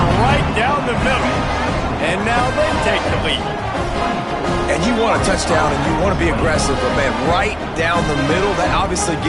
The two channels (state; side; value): identical; both; correlation 1.00